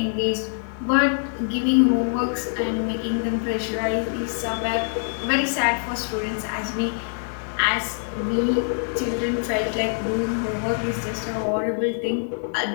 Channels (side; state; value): right; silent; digital silence